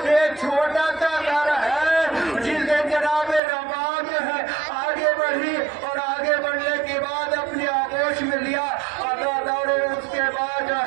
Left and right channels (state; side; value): drops out; left; at 3.4 s